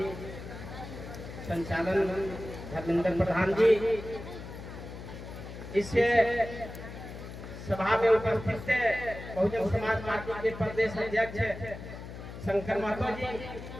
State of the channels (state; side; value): noise; left; hum, 11 dB below the sound